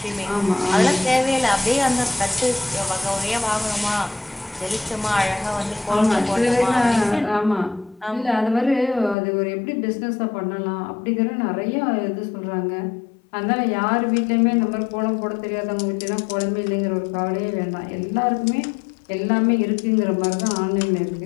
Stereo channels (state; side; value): drops out; right; at 9.2 s